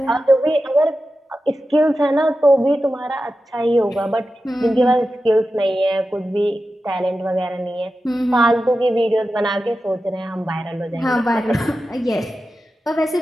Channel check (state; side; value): normal; both; correlation 0.92